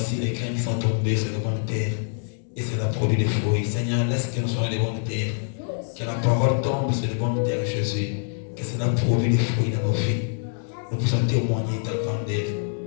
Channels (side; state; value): right; silent; digital silence